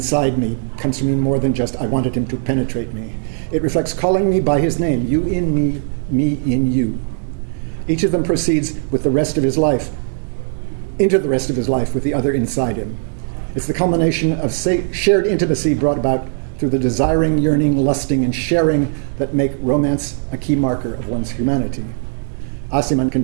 me comes to mean more than just I wanted him to penetrate me. It reflects calling me by his name, you in me, me in you. Each of them proceeds with the rest of his life, into the rest of his life with the other inside him. It's the culmination of shared intimacy brought about through the desiring, yearning, lusting, and sharing that make romance a key marker of one's humanity. Aciman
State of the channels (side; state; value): left; silent; digital silence